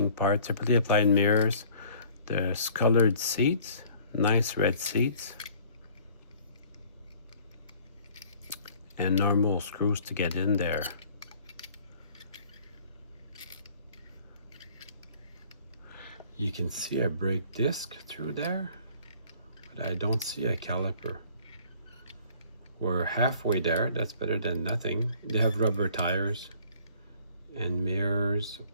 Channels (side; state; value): both; inverted; correlation -0.54